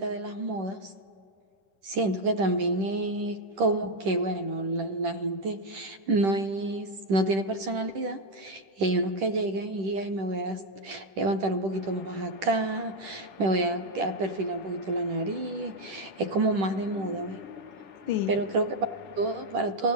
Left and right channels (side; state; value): left; late; 10 ms